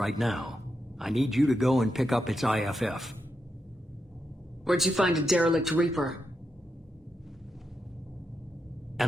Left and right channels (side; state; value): both; normal; correlation 0.85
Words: now. I need you to go and pick up its IFF. Where'd you find a derelict Reaper?